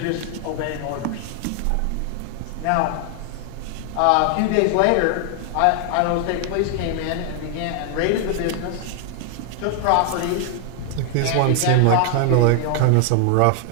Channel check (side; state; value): both; different; correlation 0.00